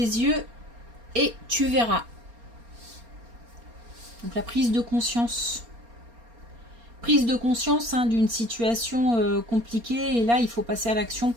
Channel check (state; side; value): late; left; 4.3 ms